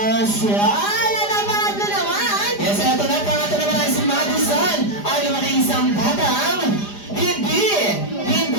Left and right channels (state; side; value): late; right; 4.9 ms